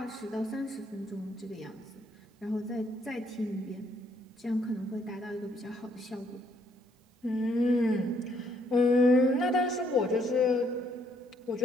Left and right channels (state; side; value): normal; both; correlation 0.69